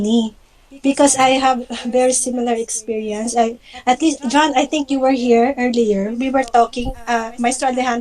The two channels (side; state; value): both; identical; correlation 1.00